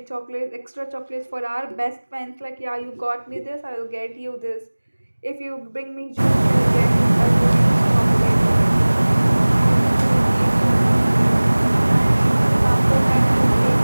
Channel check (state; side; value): inverted; both; correlation -1.00